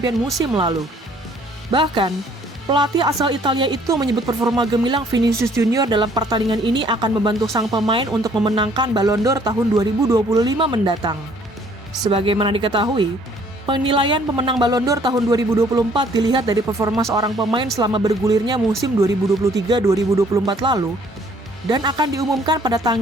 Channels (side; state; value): both; normal; correlation 0.60